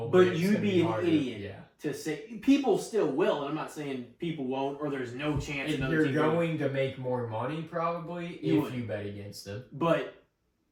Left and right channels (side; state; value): both; identical; correlation 1.00